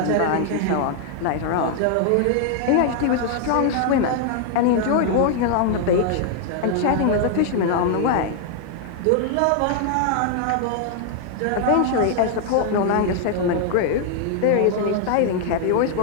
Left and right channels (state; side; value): different; both; correlation 0.00